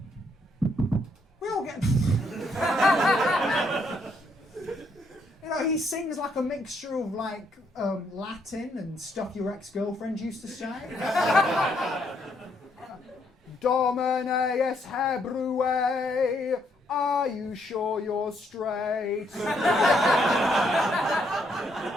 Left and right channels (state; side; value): normal; both; correlation 0.73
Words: We all get. He sings like a mixture of Latin and stuff your ex-girlfriend used to say. Domine es Hebrue, are you sure you're straight?